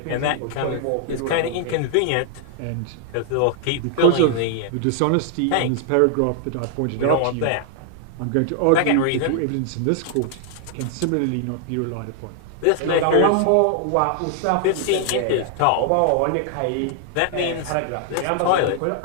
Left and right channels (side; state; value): both; different; correlation 0.00